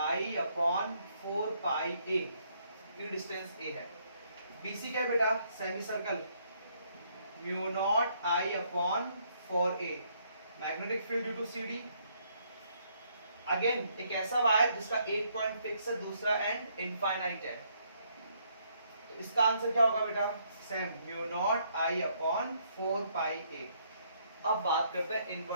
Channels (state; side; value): inverted; both; correlation -0.70